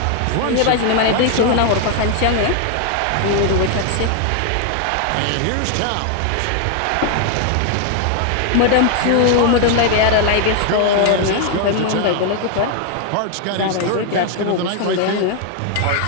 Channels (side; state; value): both; different; correlation 0.00